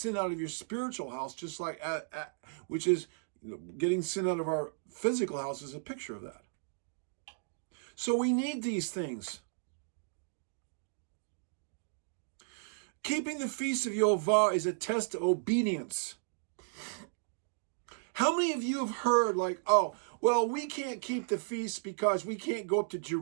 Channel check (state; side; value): silent; left; digital silence